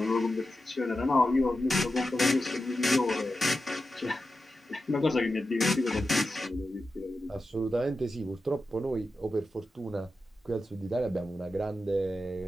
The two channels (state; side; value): normal; both; correlation 0.91